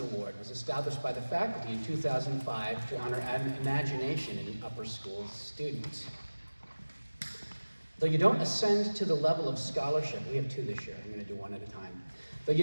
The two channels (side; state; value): both; inverted; correlation -1.00